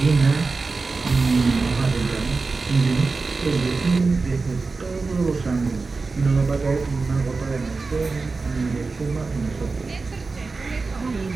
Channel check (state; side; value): quieter; left; 4.1 dB